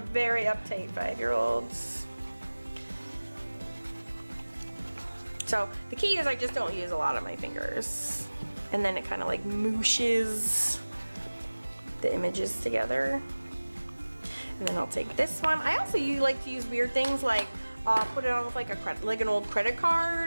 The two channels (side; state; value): both; inverted; correlation -1.00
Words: uptight 5-year-old. So the key is I just don't use a lot of my fingers. And then it kind of like mooshes the images together. And then I'll take this one. I also like to use weird things like put it on with like an old credit